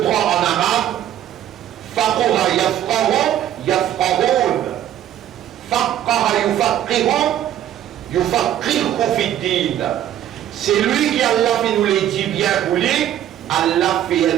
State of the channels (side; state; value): left; quieter; 11.4 dB